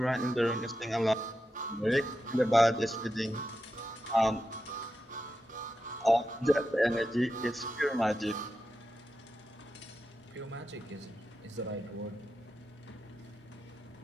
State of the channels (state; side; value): normal; both; correlation 0.89